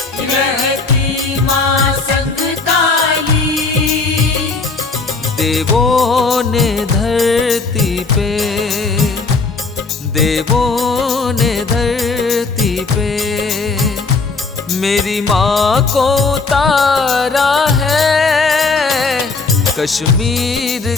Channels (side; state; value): right; quieter; 4.1 dB